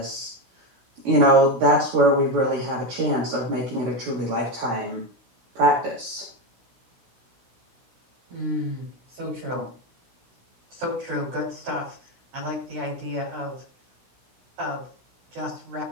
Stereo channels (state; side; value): late; left; 16 ms